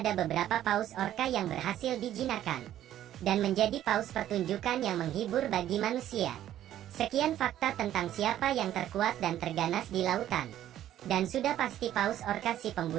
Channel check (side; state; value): left; quieter; 12.1 dB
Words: beberapa paus orca yang berhasil dijinakkan dan menjadi paus pertunjukan yang menghibur bagi manusia. Sekian fakta tentang siapa yang terkuat dan terganas di lautan. Dan sudah pasti paus orca si